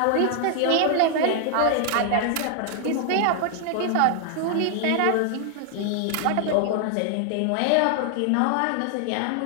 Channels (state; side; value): different; both; correlation 0.00